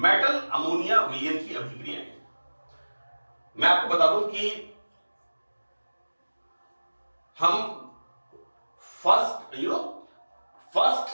अमोनिया विलयन की अभिक्रियाएं। मैं आपको बता दूं कि हम first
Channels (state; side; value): inverted; both; correlation -1.00